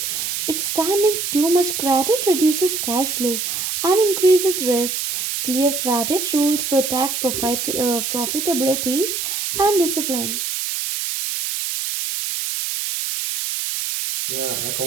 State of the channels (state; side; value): noise; right; hiss, 2 dB below the sound